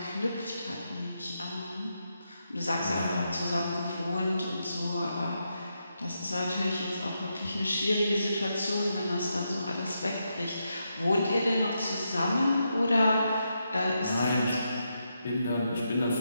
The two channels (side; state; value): both; inverted; correlation -0.83